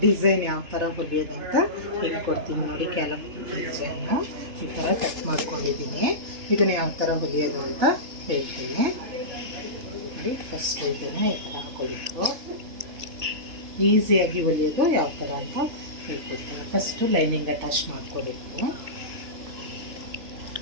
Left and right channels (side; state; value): left; late; 3.1 ms